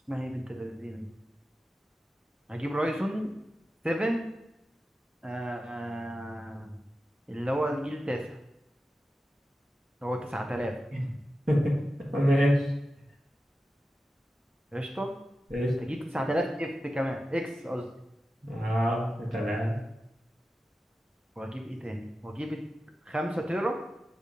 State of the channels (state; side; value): normal; both; correlation 0.92